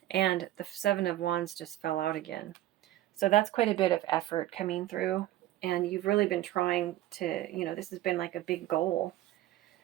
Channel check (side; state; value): left; quieter; 14.6 dB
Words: And the Seven of Wands just fell out again. So that's quite a bit of effort coming through. And you've really been trying to, this has been like a big goal.